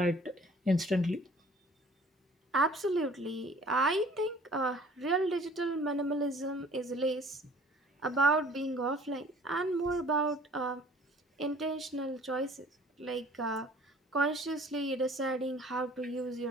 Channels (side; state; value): both; normal; correlation 0.52